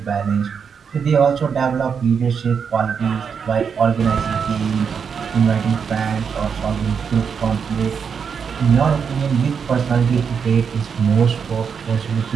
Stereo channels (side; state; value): left; quieter; 6.5 dB